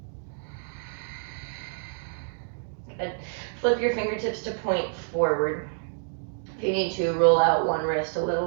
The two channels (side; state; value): left; silent; digital silence